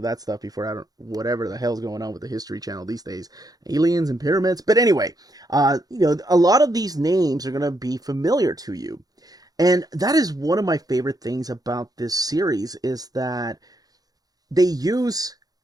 that stuff before, I don't, whatever the hell's going on with the History Channel these days, aliens and pyramids. But anyway, you know, a lot of these names are going to be familiar to you. And that is one of my favorite things about this series, is that they use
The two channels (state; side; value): late; left; 0.18 ms